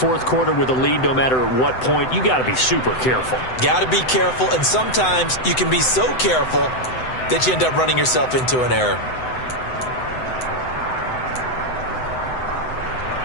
quarter with a lead, no matter at what point, you got to be super careful. Got to be careful, and sometimes you can be so careful that you end up running yourself into an error.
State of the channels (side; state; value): right; late; 7.9 ms